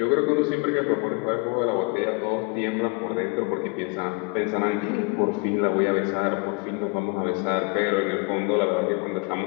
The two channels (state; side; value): quieter; right; 31.2 dB